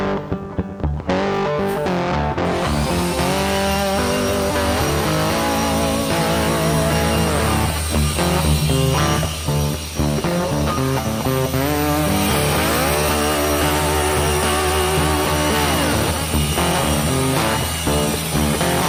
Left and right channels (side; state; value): both; identical; correlation 1.00